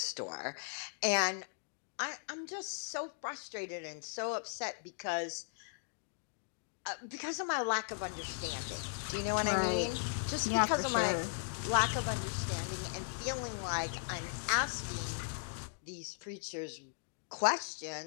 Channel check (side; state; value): right; silent; digital silence